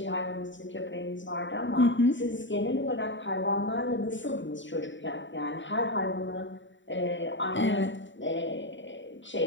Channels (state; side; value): late; right; 0.54 ms